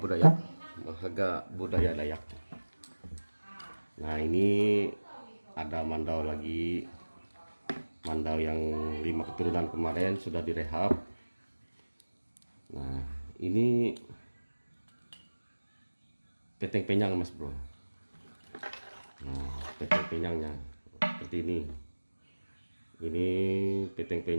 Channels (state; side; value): inverted; both; correlation -1.00